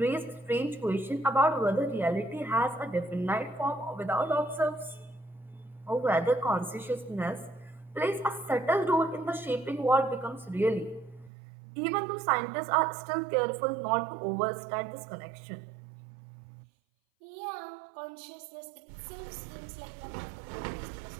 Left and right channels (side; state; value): left; drops out; at 11.3 s